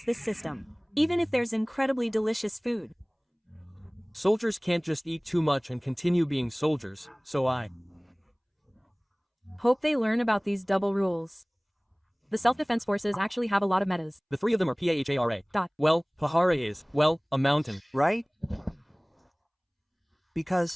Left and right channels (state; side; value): identical; both; correlation 1.00